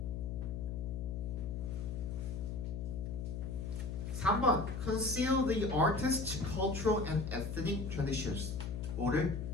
3번 Conceal the artist's cultural and ethnic traditions. 5를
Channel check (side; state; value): left; noise; hum, 4 dB below the sound